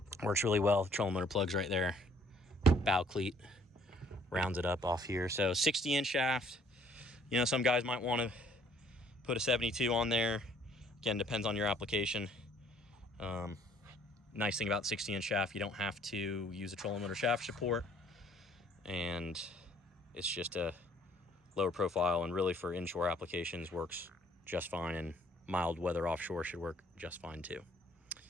Works really well. Trolling motor plugs right there. Bow cleat rounds it up off here. So 60-inch shaft. You know, some guys might want to put a 72 on there. Again, depends on your application. Nice thing about 60-inch shaft, you don't have to use a trolling motor shaft support, and it's just a lower profile, and really for inshore applications works just fine, and mild weather offshore should work just fine too.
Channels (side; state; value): both; normal; correlation 0.60